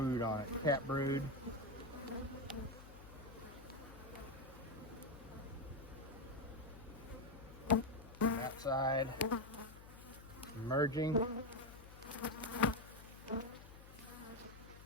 on it, cat brood. That side, emerging.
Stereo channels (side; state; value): left; noise; hum, 16 dB below the sound